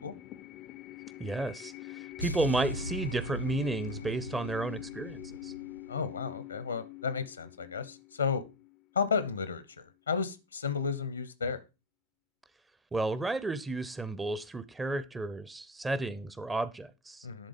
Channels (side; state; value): both; normal; correlation 0.22